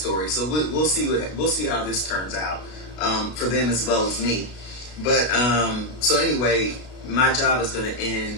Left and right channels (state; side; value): late; right; 33 ms